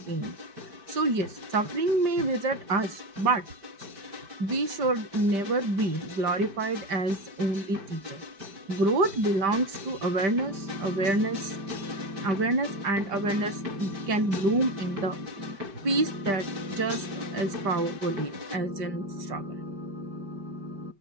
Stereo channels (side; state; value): left; late; 5.1 ms